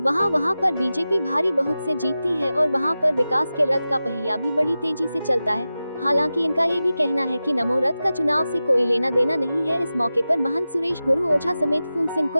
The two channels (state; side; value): inverted; both; correlation -0.94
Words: वहां पर बीजेपी भारी बहुत से जीतती है और वहां पर विकास के रथ का पहिया भी बड़ी तेजी से चलता है। हालांकि इनका ये भी कहना है कि नमो रथ का चुनाव से कोई लेना देना नहीं है। इस मौके पर महंत सुरेश गुरु ओझा समेत फूल सिंह